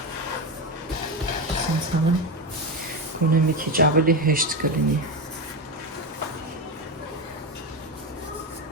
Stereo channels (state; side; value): normal; both; correlation 0.15